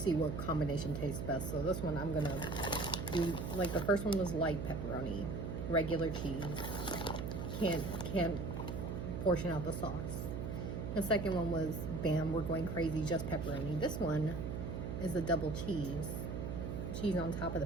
what combination tastes best. So this one I'm going to do, like the first one was light pepperoni, regular cheese. Can't portion out the sauce. The second one was, bam, we're going crazy, just pepperoni. This one is a double cheese. Cheese on top of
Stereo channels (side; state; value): right; noise; hum, 4 dB below the sound